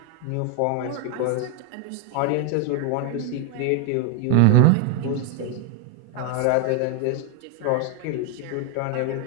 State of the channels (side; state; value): both; different; correlation 0.01